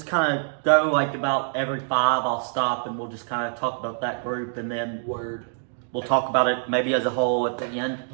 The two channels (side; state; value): left; silent; digital silence